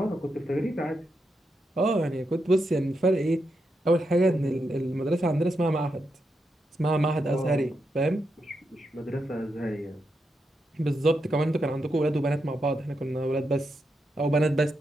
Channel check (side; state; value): both; normal; correlation 0.84